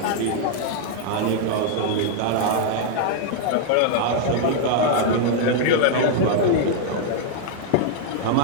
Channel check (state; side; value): different; both; correlation 0.00